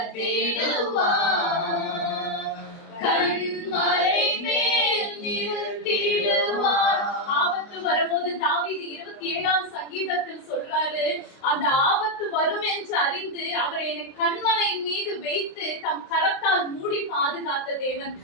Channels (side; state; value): right; late; 29 ms